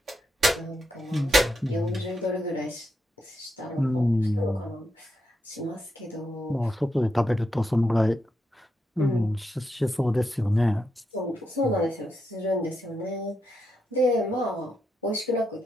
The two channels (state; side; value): normal; both; correlation 0.83